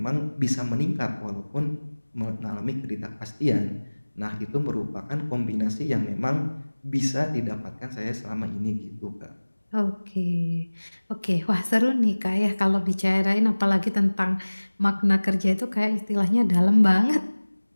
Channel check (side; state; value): both; inverted; correlation -1.00